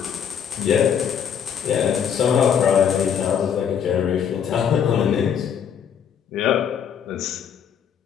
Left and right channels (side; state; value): right; quieter; 8.1 dB